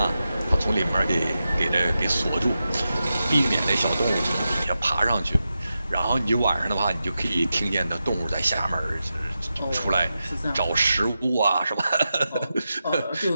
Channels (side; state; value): both; inverted; correlation -0.90